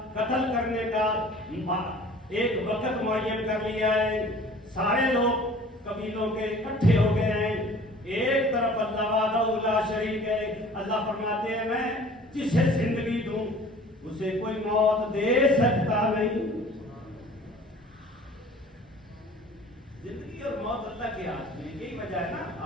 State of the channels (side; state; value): both; normal; correlation 0.48